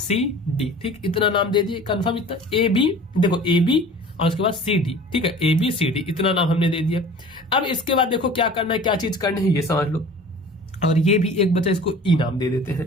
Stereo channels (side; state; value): both; normal; correlation 0.43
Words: ठीक, इतना नाम दे दिए। कंफर्म इतना AB, देखो AB और उसके बाद CD, ठीक है, ABCD इतना नाम हमने दे दिया। अब इसके बाद देखो क्या करना है, क्या चीज करनी है ये समझ लो, और ये भी एक बचा, इसको E नाम दे देते